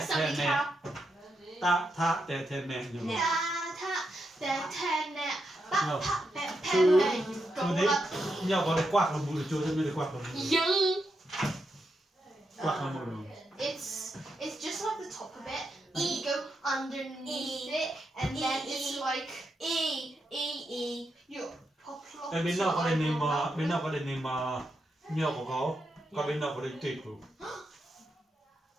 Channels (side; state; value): both; normal; correlation 0.83